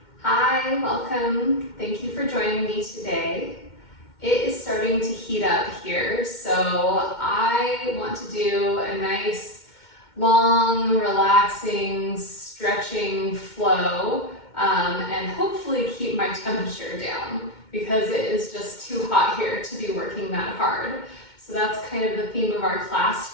Hi, welcome. Thank you for joining me today. It is starting to heat up here, so I want to do a nice, long, relaxing, stretching flow and hopefully keep my temperature down because it is just too hot here to be working that hard. So that's kind of the theme of our class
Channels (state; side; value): late; right; 2.1 ms